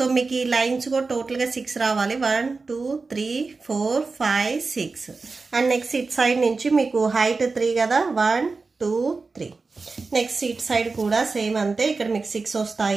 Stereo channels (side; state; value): left; quieter; 4.1 dB